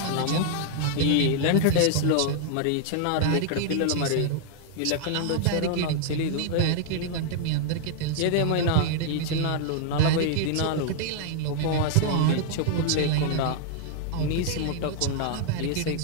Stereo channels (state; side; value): different; both; correlation -0.01